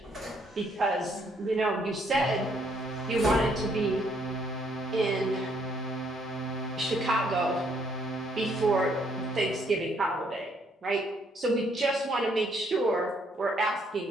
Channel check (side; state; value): both; normal; correlation 0.69